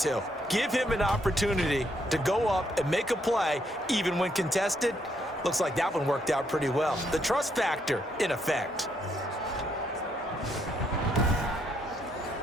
Give him an opportunity to go up and make a play, even when contested. Looks like that one worked out pretty well. The trust factor in effect.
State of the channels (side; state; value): both; normal; correlation 0.74